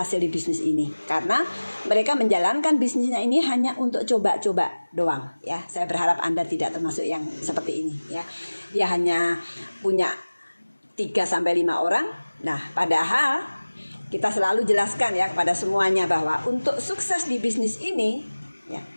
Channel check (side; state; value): both; inverted; correlation -1.00